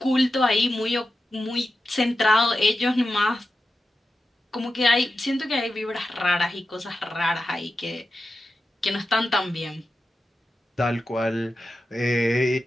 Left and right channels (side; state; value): both; normal; correlation 0.91